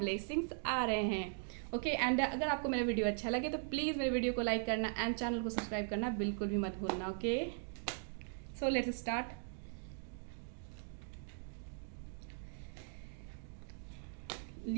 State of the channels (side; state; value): left; silent; digital silence